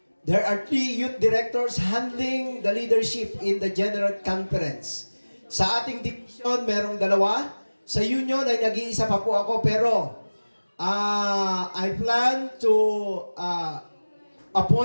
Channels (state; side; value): inverted; both; correlation -1.00